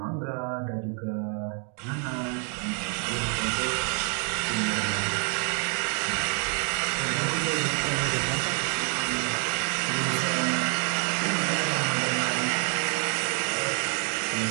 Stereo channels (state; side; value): quieter; left; 39.6 dB